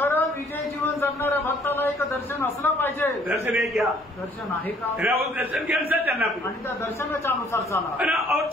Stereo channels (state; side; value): normal; both; correlation 0.61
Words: विजय जीवन जगणाऱ्या भक्ताला एक दर्शन असलं पाहिजे. दर्शन है क्या? दर्शन आहे का? उस दर्शन के अनुसार चलना पड़ेगा. आणि त्या दर्शनाच्या अनुसार चाला. है ना. और